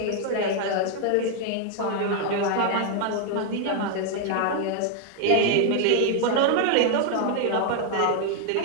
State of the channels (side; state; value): both; different; correlation 0.00